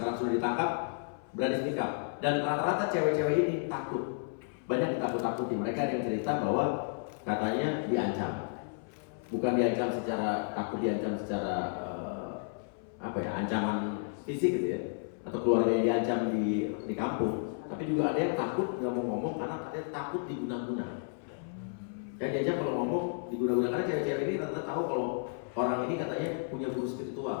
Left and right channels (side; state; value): right; silent; 56 dB below the other